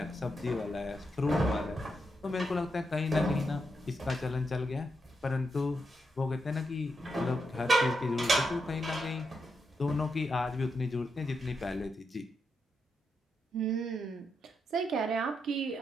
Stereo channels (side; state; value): both; normal; correlation 0.83